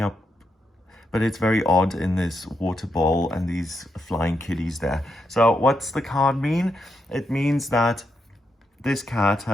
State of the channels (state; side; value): normal; both; correlation 0.82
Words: up, but it's very odd in this water bowl and these flying kitties there. So what's the card mean? It means that this cat